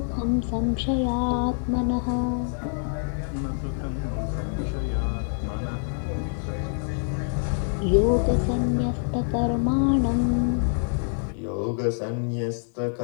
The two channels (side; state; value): right; silent; 61 dB below the other